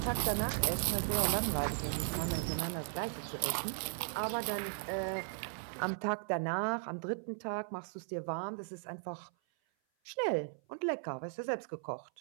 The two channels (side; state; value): left; silent; 53 dB below the other